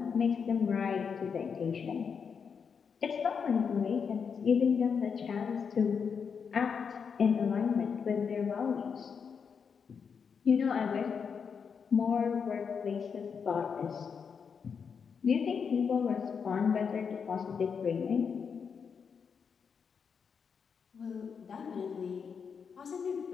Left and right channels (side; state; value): right; quieter; 6.3 dB